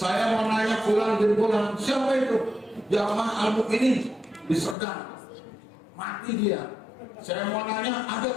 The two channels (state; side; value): drops out; right; at 4.8 s